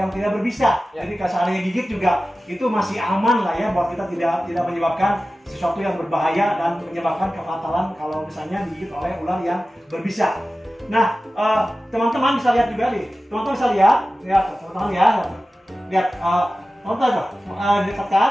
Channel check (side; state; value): both; normal; correlation 0.95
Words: tidak berbisa. Ya. Jadi kalau seandainya gigit juga itu masih aman lah ya, buat kita tidak menyebabkan sesuatu yang berbahaya dan menyebabkan kefatalan kalau misalnya digigit oleh ular yang berbisa. Nah, teman-teman bisa lihat juga nih. Teman-teman bisa lihat teman-teman ya. Lihat nonton tuh, dekat,